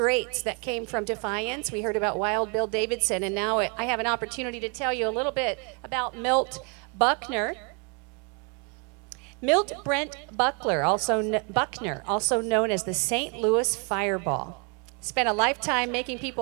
that came from Defiance. We heard about Wild Bill Davidson, and now I have an opportunity to tell you a little bit about Milt Buckner. Milt Brent Buckner, also known as the St. Louis Fireball, spent a lifetime making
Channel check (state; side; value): quieter; left; 35.3 dB